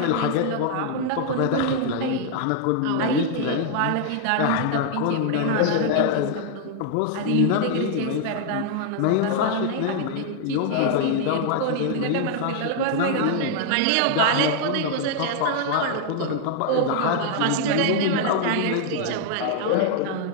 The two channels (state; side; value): different; both; correlation 0.00